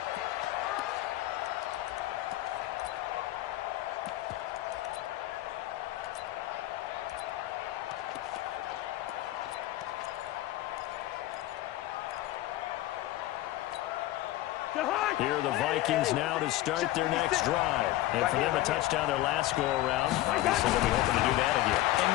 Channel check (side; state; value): right; quieter; 15.9 dB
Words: Here are the Vikings now to start their next drive. And for them, a touchdown their last go-around. Obviously, they'll be hoping to do that again. And